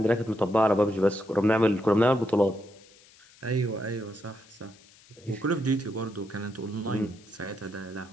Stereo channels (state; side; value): noise; left; hiss, 26 dB below the sound